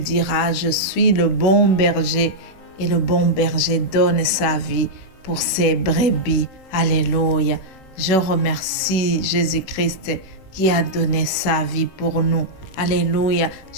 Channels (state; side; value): late; right; 16 ms